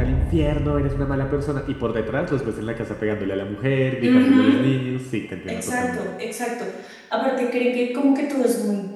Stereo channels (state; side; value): identical; both; correlation 1.00